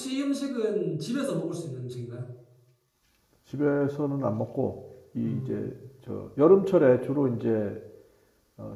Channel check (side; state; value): both; identical; correlation 1.00